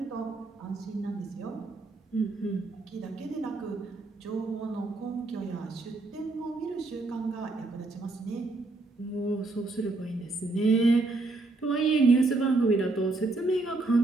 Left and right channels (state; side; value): quieter; left; 3.3 dB